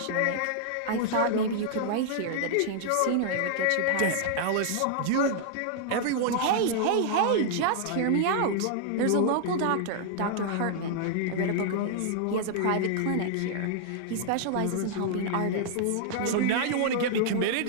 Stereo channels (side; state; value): both; different; correlation -0.01